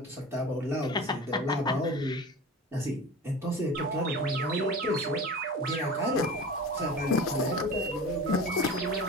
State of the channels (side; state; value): both; normal; correlation 0.35